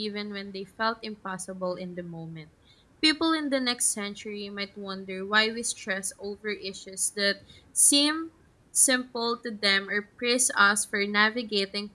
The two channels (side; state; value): both; identical; correlation 1.00